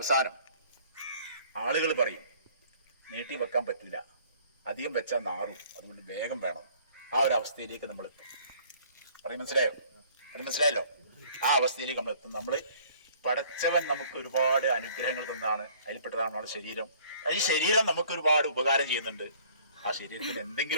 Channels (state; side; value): inverted; both; correlation -0.55